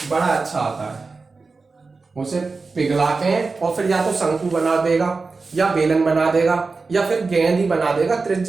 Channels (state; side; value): quieter; left; 4.1 dB